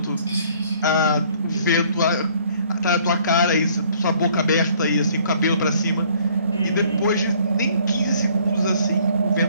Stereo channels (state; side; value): inverted; both; correlation -0.60